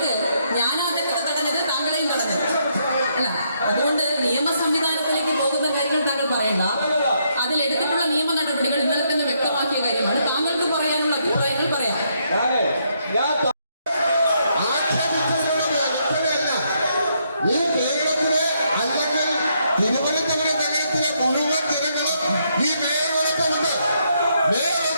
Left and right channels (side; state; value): both; inverted; correlation -0.75